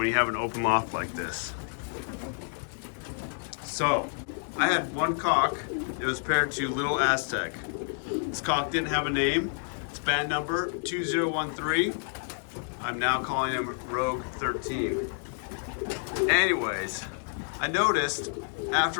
you have an open loft like this. So, I had one cock that was paired to Little Aztec. This cock didn't have a name. It's band number 2013. I'm now calling him Rogue 13. Anyways, I noticed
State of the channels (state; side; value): silent; right; 59 dB below the other